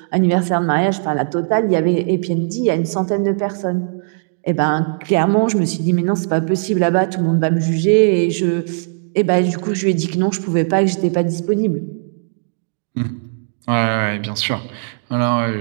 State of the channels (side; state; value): left; silent; digital silence